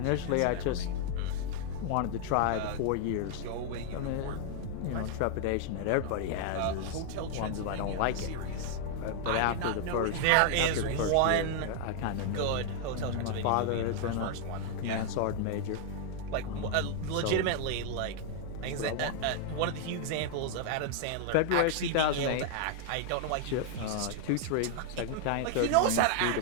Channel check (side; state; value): both; different; correlation 0.00